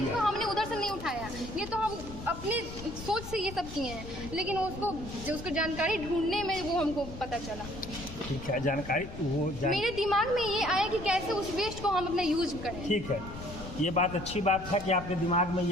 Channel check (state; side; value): noise; left; rumble, 11 dB below the sound